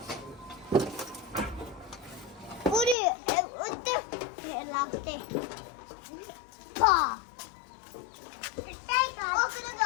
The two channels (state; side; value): drops out; right; at 3.0 s